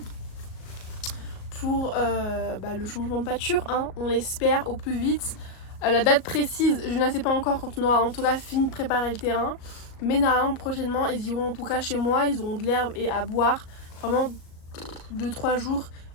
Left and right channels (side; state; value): right; late; 38 ms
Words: pour le changement de pâture, hein, on l'espère au plus vite. La date précise, je ne la sais pas encore quand on aura en tout cas fini de préparer le terrain. Mais normalement prochainement, ils iront en tout cas chez moi, ils auront de l'herbe et à boire. Vraiment 2-3 jours,